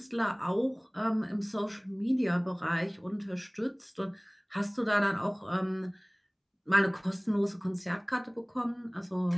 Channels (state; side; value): identical; both; correlation 1.00